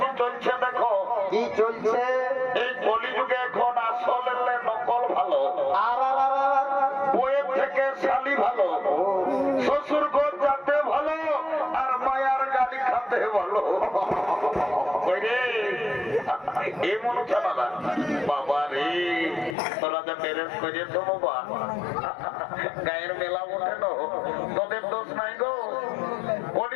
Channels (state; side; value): drops out; right; at 19.6 s